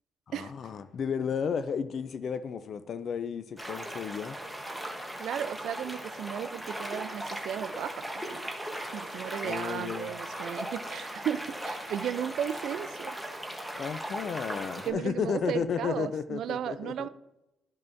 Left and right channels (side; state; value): both; normal; correlation 0.68